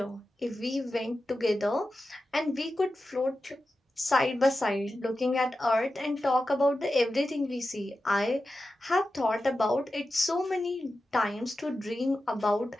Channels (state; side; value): normal; both; correlation 0.92